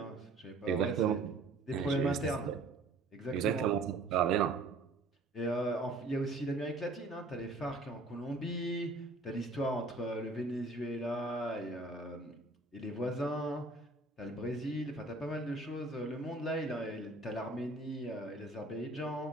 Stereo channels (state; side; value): quieter; left; 3.2 dB